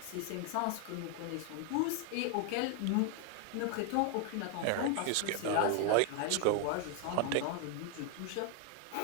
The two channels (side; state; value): both; different; correlation 0.00